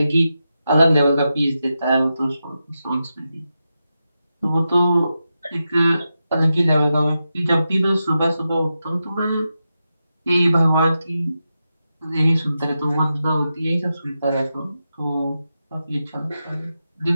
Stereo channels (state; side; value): inverted; both; correlation -0.89